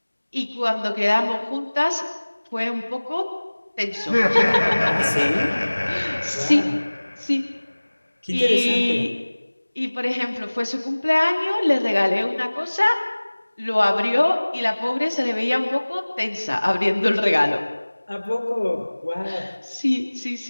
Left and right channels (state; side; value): inverted; both; correlation -1.00